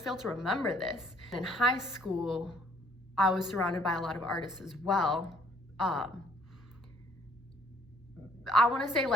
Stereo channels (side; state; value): both; normal; correlation 0.62